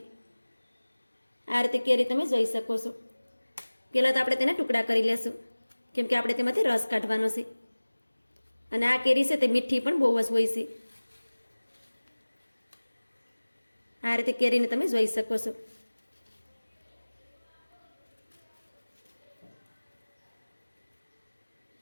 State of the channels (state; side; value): inverted; both; correlation -1.00